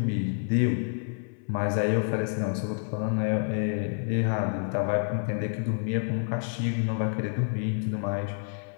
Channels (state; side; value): silent; right; 59 dB below the other